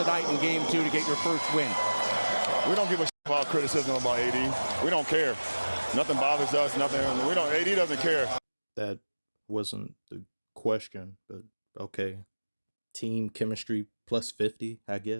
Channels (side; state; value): both; inverted; correlation -1.00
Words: in Game 2 to get your first win? We don't give a shit about criticism about AD. We don't care. Nothing bothers us. Nothing. AD doesn't care. That wasn't the question, but okay. Team chemistry plus 50, I